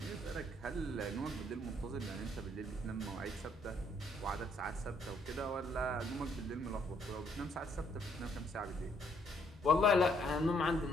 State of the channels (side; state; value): both; normal; correlation 0.68